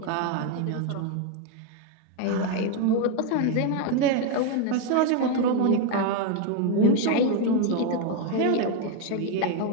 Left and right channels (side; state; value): both; different; correlation 0.01